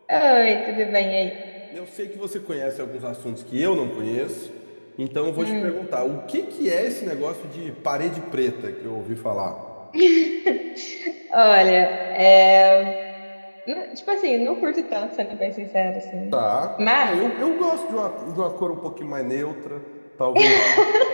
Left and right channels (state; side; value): inverted; both; correlation -1.00